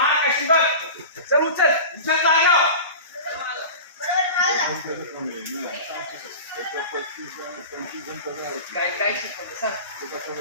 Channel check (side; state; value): both; inverted; correlation -0.33